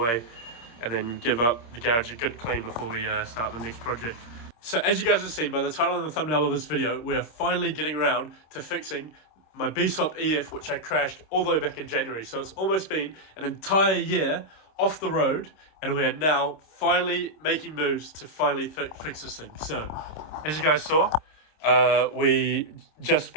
and then give up the garage a good clean before we start the next project. So as you guys have seen by the title and the thumbnail of this video, we are finally getting around to fixing my B16 EF, which I crashed all the way back in January. So it's almost been an entire year off the road, and we are now finally making moves to finally fix this thing. So as you guys saw, we just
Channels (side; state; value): right; late; 26 ms